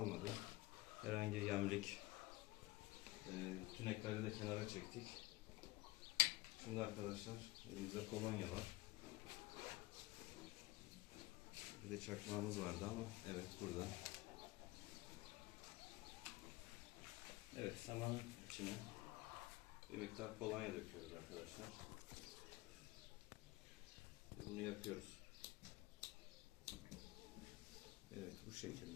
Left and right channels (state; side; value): quieter; right; 20.2 dB